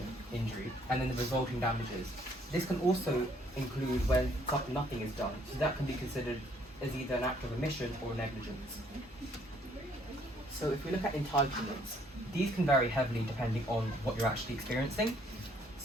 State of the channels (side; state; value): both; normal; correlation 0.65